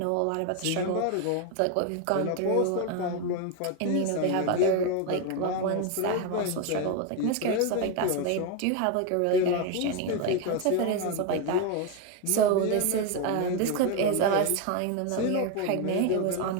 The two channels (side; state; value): both; different; correlation 0.02